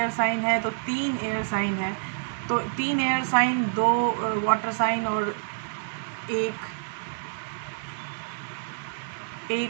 साइन है, तो 3 एयर साइन है, तो 3 एयर साइन, 2 वाटर साइन और एक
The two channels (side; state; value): left; silent; digital silence